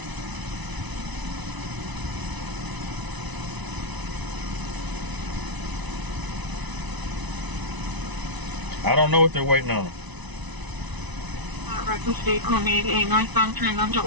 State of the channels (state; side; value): late; left; 1.0 ms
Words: I don't know what they're waiting on. Records vehicle made a northbound turn onto